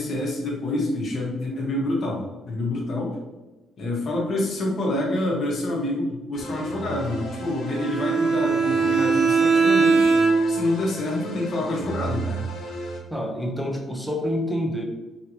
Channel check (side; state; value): both; normal; correlation 0.77